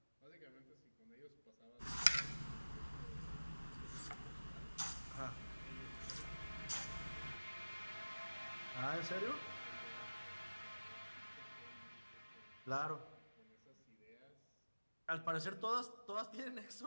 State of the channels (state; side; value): inverted; both; correlation -1.00